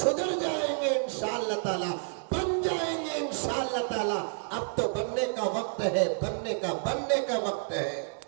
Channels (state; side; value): silent; left; digital silence